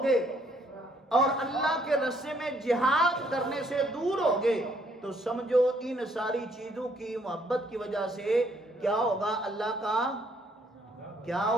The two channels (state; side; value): normal; both; correlation 0.67